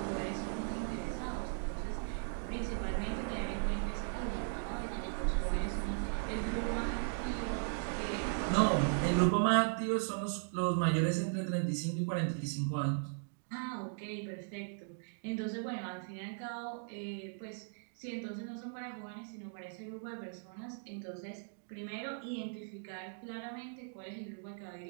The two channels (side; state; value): left; silent; digital silence